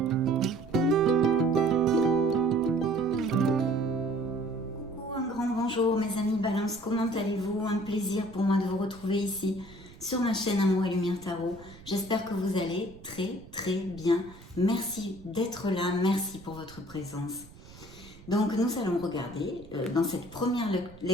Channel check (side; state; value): right; noise; rumble, 20 dB below the sound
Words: grand bonjour mes amis Balance, comment allez-vous? Un plaisir pour moi de vous retrouver ici sur ma chaîne Amour et Lumière Tarot. J'espère que vous allez très bien. Merci d'être là, merci pour votre présence. Donc nous allons regarder dans cette première